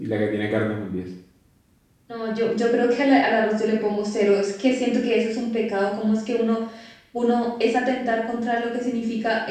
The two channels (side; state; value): both; identical; correlation 1.00